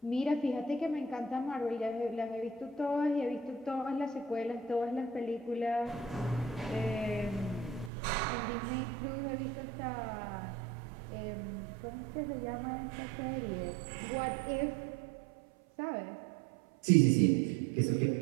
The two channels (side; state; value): left; drops out; at 7.9 s